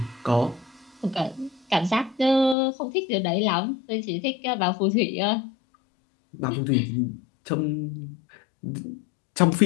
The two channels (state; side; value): drops out; right; at 2.6 s